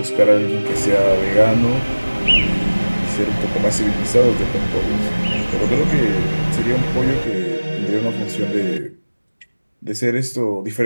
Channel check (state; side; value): inverted; both; correlation -1.00